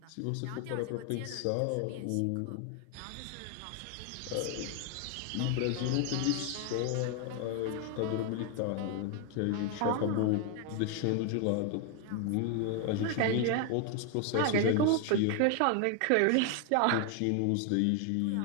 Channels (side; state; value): both; different; correlation 0.01